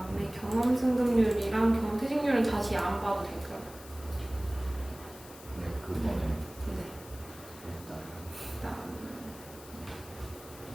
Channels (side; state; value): left; noise; hiss, 18 dB below the sound